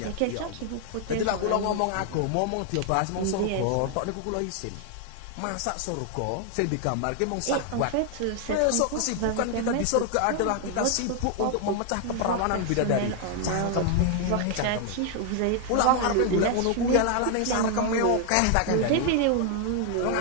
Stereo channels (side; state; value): both; different; correlation 0.00